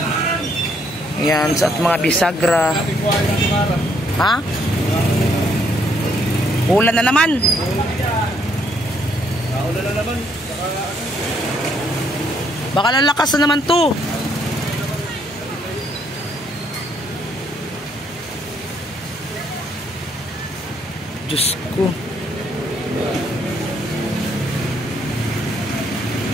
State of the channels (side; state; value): both; normal; correlation 0.70